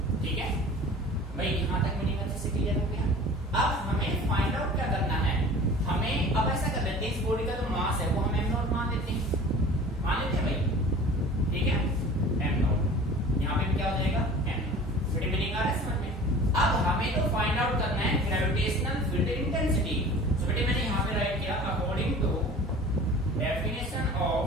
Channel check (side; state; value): both; normal; correlation 0.42